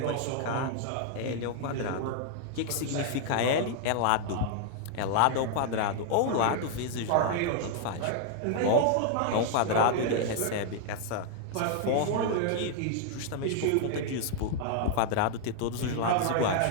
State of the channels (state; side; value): different; both; correlation 0.00